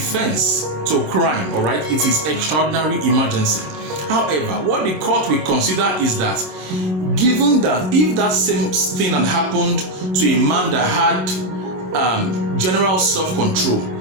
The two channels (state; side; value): late; left; 27 ms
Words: to crime, all right? It is extraordinary emergency. However, what the court will consider is that, given that if that same thing had happened to a man that had general self-control,